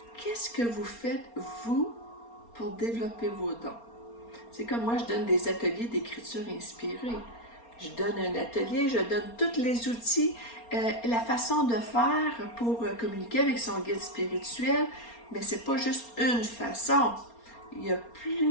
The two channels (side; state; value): right; late; 4.3 ms